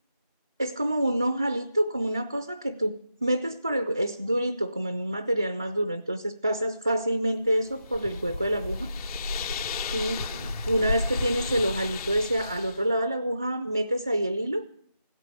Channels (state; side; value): inverted; both; correlation -0.86